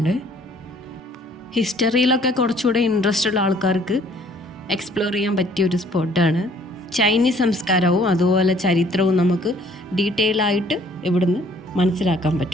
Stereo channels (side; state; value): both; normal; correlation 0.58